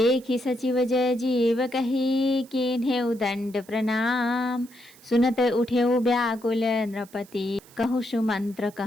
सचिव जय जीव कही किन्हें उदंड प्रणाम। सुनत उठे व्याकुल नृपति कहु सुमंत्र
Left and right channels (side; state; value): right; noise; hiss, 25 dB below the sound